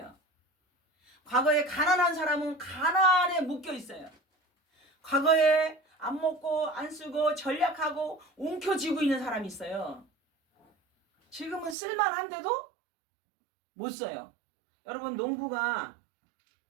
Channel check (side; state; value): left; drops out; at 11.8 s